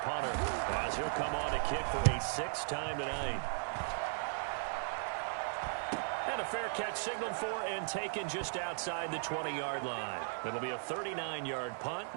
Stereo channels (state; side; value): silent; left; 53 dB below the other